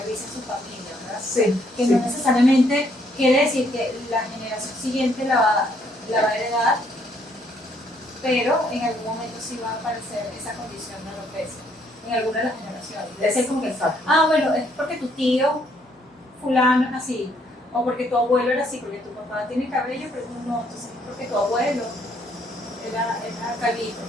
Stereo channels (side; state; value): both; normal; correlation 0.68